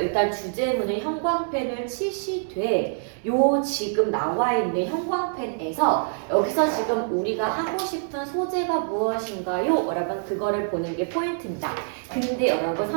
주제문을 형광펜을 치시되 요 지금 나와 있는 형광펜에서 여기서 지금 우리가 하고 싶은 소재가 무엇인가요? 여러분 그거를 보는 게 포인트입니다. 근데 여러분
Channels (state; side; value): silent; left; digital silence